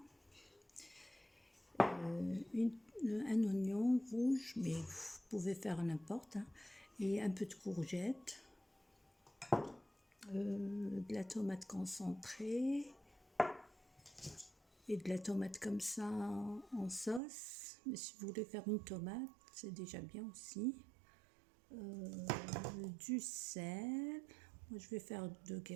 Un oignon rouge, mais vous pouvez faire n'importe, hein, et un peu de courgette, de la tomate concentrée et de la tomate comme ça en sauce. Mais si vous voulez faire une tomate, c'est déjà bien aussi. Du sel, moi je vais faire 2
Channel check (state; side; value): drops out; left; at 17.2 s